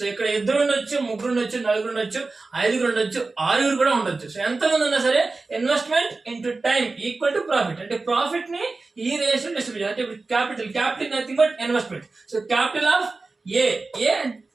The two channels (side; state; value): left; quieter; 3.7 dB